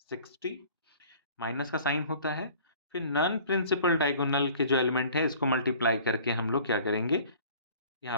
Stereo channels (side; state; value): both; inverted; correlation -0.49